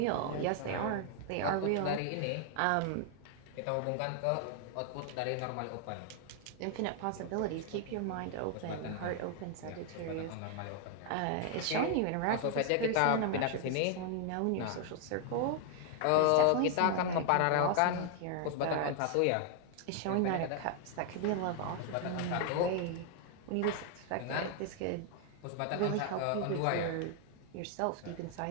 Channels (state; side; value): different; both; correlation 0.00